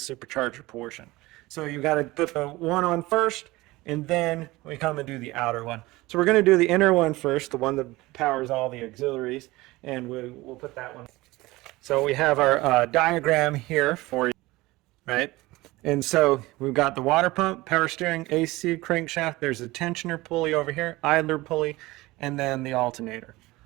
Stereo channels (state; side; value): quieter; left; 20.0 dB